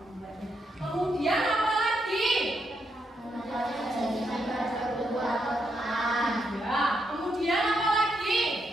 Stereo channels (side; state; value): both; normal; correlation 0.80